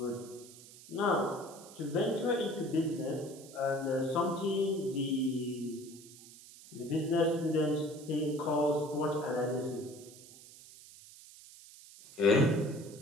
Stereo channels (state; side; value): noise; right; hiss, 19 dB below the sound